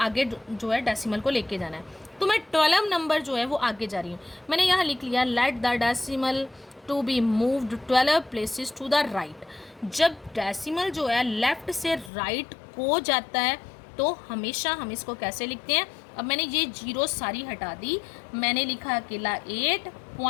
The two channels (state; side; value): drops out; right; at 12.1 s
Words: जो है डेसिमल को लेके जाना है। तो मैं 12 नंबर जो है वो आगे जा रही हूँ। मैंने यहाँ लिख लिया let the decimal to be moved 12 places to the right. जब डेसिमल जो है लेफ़्ट से राइट को जाता है तो हमेशा हम इसको कैसे लिखते हैं। अब मैंने ये जीरो सारी हटा दी, मैंने लिखा अकेला 8